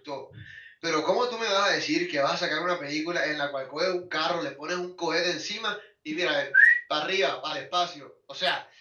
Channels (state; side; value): identical; both; correlation 1.00